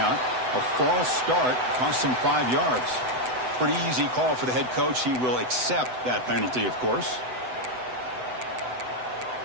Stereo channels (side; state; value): left; late; 7.9 ms